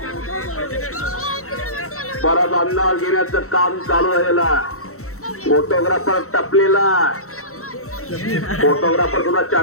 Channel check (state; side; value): late; right; 0.64 ms